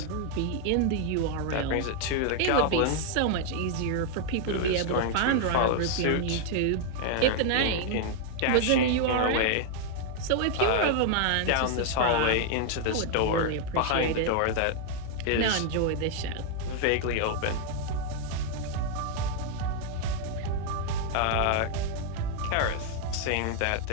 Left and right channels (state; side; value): different; both; correlation 0.00